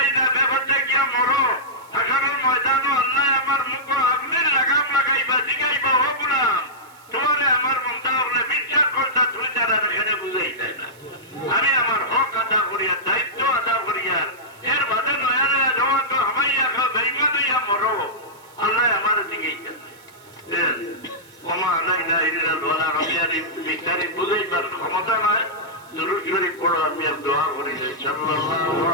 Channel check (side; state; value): right; noise; hiss, 26 dB below the sound